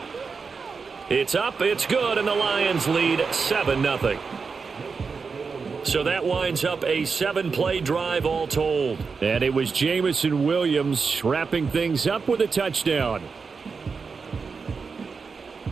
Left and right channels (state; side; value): quieter; left; 5.1 dB